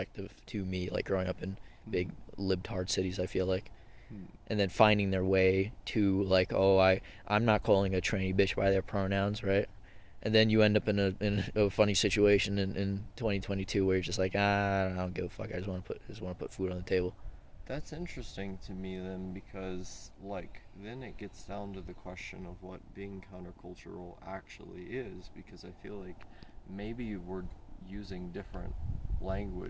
to me, like growing up in big libtard cities, I feel like. And then finding their way to like, oh, I'm not calling a tranny bitch by their pronouns, right? And then you end up in a funny situation in 2022 where you're just like, I don't give a fuck. I just want to put food on the table. That's interesting to me then, because like then it gets down to the question of what being countercultural actually is, because I feel like maybe we're using different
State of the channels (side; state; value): both; identical; correlation 1.00